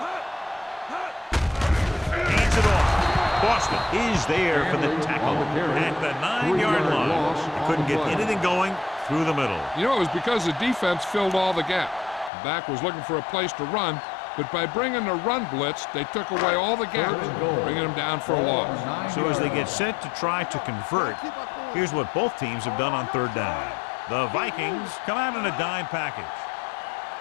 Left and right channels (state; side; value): drops out; right; at 12.3 s